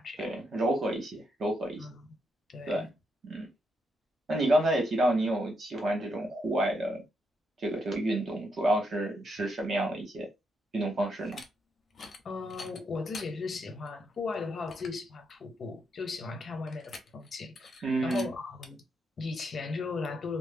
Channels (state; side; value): normal; both; correlation 0.80